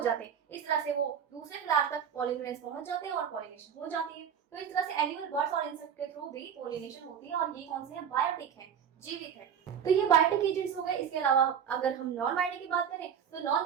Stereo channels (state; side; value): quieter; left; 8.1 dB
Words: हैं। इस तरह से वो दूसरे फ्लावर तक पोलन ग्रेन्स पहुंच जाते हैं और पॉलिनेशन हो जाती है। तो इस तरह से एनिमल, बर्ड्स और इंसेक्ट के थ्रू भी पॉलिनेशन होती है, और ये कौन से हैं, बायोटिक है, जीवित है। तो ये बायोटिक एजेंट्स हो गए। इसके अलावा अगर हम नॉन बायोटिक की बात करें तो नॉन